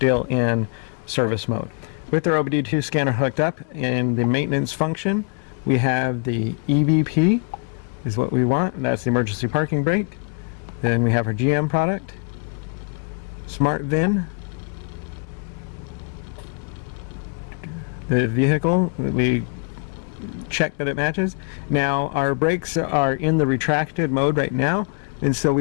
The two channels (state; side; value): quieter; right; 38.1 dB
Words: in service mode. With our OBD2 scanner hooked up in the maintenance function, we have the EVP is what we want, and that's the emergency parking brake. Then we have our GM product, Smart VIN, the vehicle that we check that it matches. Now our brakes are in the retracted mode right now, and so